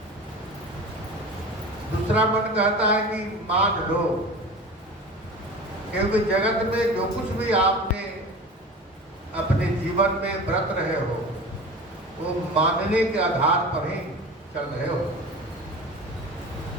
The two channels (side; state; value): both; normal; correlation 0.35